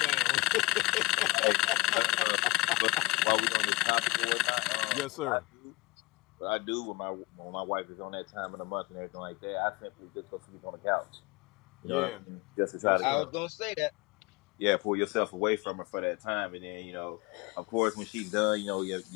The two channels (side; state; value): right; quieter; 23.2 dB